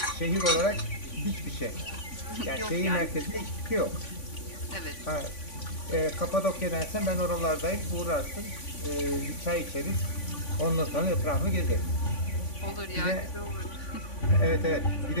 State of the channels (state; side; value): late; right; 3.5 ms